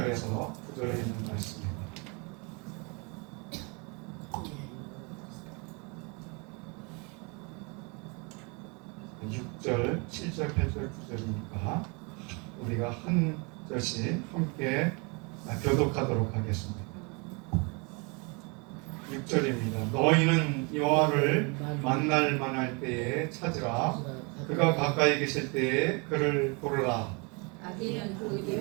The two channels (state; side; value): quieter; left; 31.7 dB